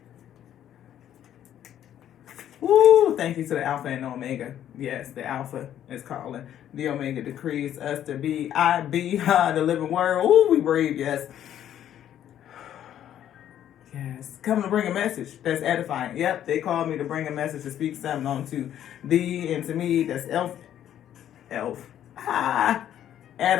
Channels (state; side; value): quieter; right; 10.8 dB